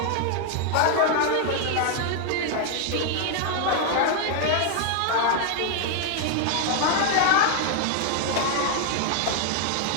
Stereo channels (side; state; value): both; different; correlation 0.00